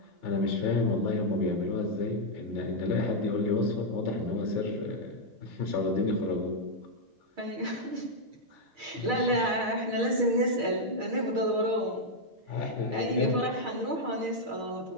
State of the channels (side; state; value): left; late; 6.4 ms